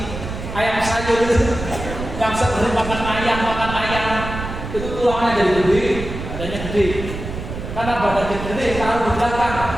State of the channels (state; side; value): noise; right; rumble, 8 dB below the sound